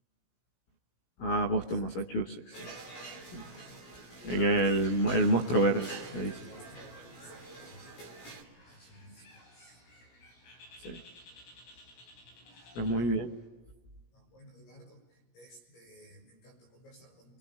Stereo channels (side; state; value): right; late; 17 ms